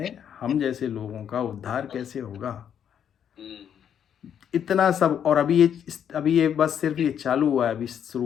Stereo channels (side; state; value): right; quieter; 8.8 dB